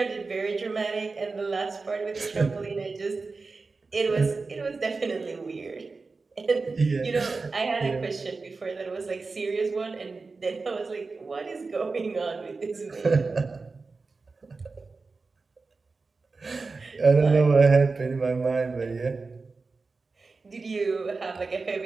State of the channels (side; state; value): left; quieter; 4.1 dB